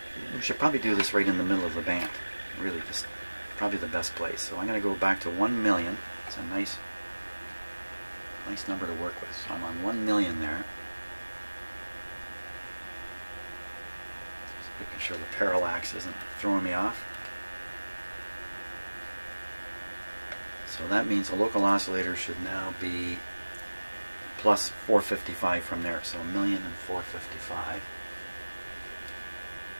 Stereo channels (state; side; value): inverted; both; correlation -1.00